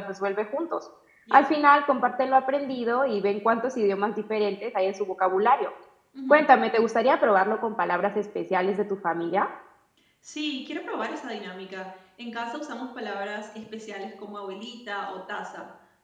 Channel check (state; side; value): identical; both; correlation 1.00